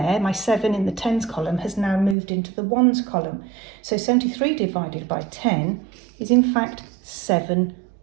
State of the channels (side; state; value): left; drops out; at 2.1 s